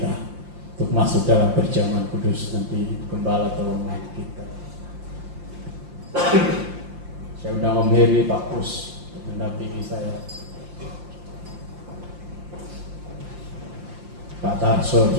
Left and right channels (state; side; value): late; left; 5.7 ms